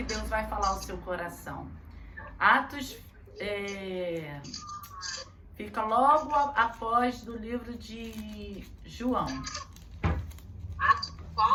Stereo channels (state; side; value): identical; both; correlation 1.00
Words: Deus vai falar ao seu coração. Atos fica logo após do livro de João. Atos